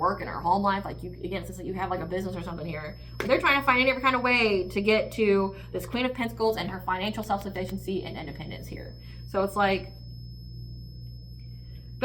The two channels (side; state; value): both; identical; correlation 1.00